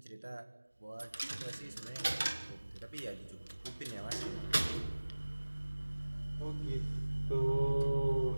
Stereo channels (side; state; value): both; inverted; correlation -1.00